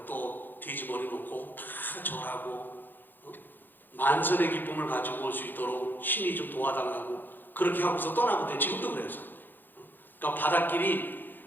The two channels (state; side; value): late; right; 0.091 ms